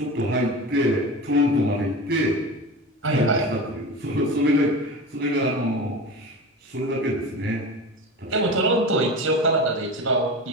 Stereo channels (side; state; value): both; normal; correlation 0.29